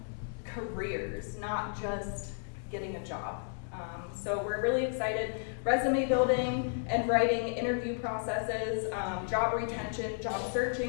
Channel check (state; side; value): silent; right; digital silence